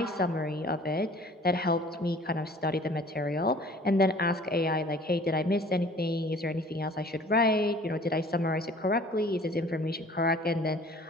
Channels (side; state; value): both; normal; correlation 0.50